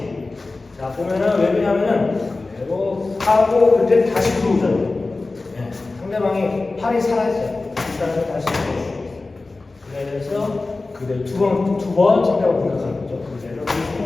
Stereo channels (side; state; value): right; quieter; 3.4 dB